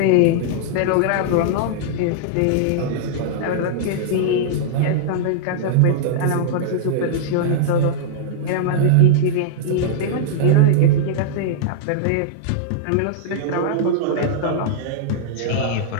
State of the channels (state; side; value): different; both; correlation -0.02